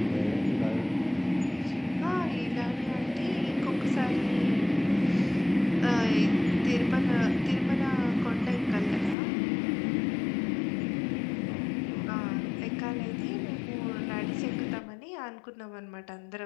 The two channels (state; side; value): drops out; right; at 9.2 s